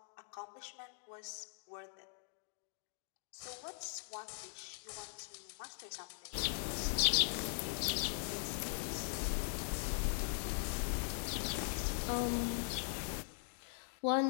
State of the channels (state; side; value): silent; right; digital silence